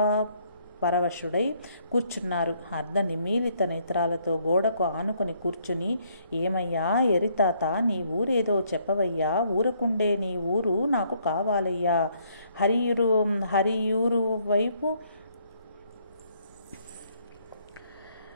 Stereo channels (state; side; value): inverted; both; correlation -0.68